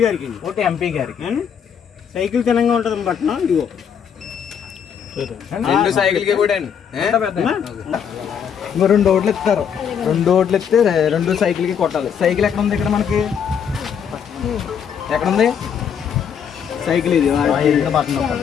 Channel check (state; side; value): quieter; right; 7.8 dB